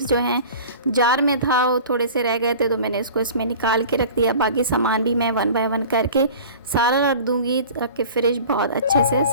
जो हैं जार में था, वो थोड़े से रह गए थे, तो मैंने इसको इसमें निकाल के रख दिया। बाकी सामान भी मैं 1 बाय 1 करके सारा रख दूँगी ताकि फ्रिज बहुत अच्छे से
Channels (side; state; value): both; inverted; correlation -0.41